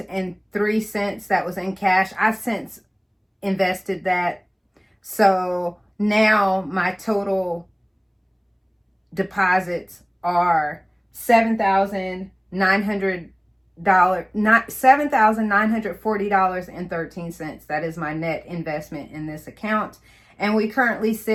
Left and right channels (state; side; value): identical; both; correlation 1.00